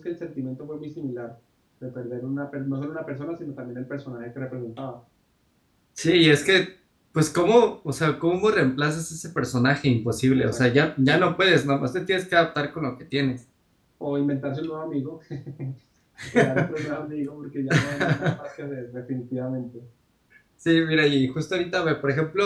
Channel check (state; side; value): identical; both; correlation 1.00